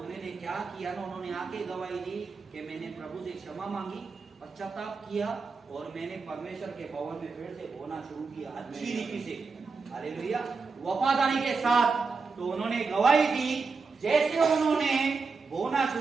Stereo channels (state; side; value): quieter; left; 4.6 dB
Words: क्या किया ना, उन्होंने आके गवाही दी कि मैंने प्रभु से क्षमा मांगी, पश्चाताप किया, और मैंने परमेश्वर के भवन में फिर से बोना शुरू किया अच्छी रीति से, हालेलुया, वफादारी के साथ। तो उन्होंने गवाही दी, जैसे उन्होंने बोना